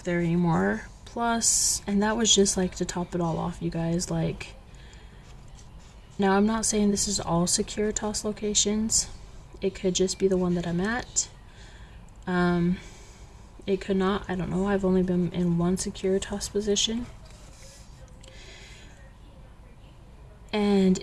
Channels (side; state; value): both; identical; correlation 1.00